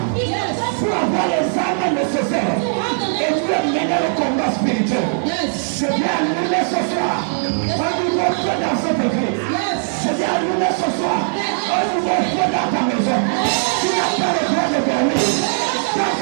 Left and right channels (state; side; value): silent; left; 67 dB below the other